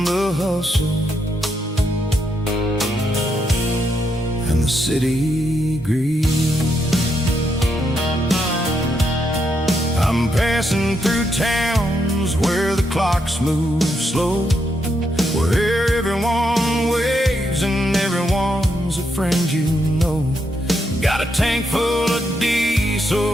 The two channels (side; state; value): both; normal; correlation 0.79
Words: the hustle and the city greed. I'm passing through towns where the clocks move slow, where everyone waves and everyone's a friend you know. Got a tank full of